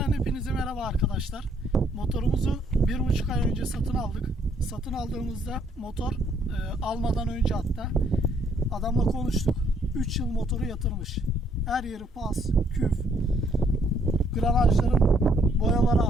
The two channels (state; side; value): normal; both; correlation 0.68